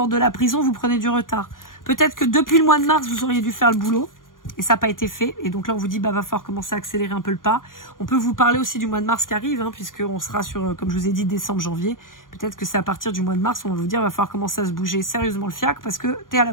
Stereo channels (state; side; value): late; right; 0.90 ms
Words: de la prison, vous prenez du retard. Peut-être que depuis le mois de mars, vous auriez dû faire le boulot et ça n'a pas été fait. Et donc là, on vous dit, bah, va falloir commencer à accélérer un peu le pas. On peut vous parler aussi du mois de mars qui arrive, hein, puisqu'on sera sur, comme je vous ai dit, décembre, janvier. Peut-être que c'est à partir du mois de mars, on va vous dire, va falloir commencer à se bouger sérieusement le fiac parce que t'es à la